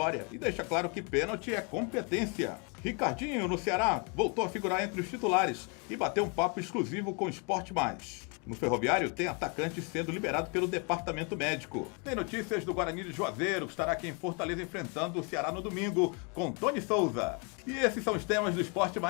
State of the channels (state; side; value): quieter; right; 34.5 dB